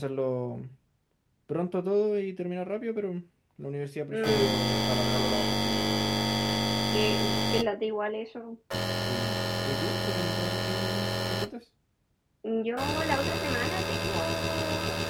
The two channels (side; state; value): both; identical; correlation 1.00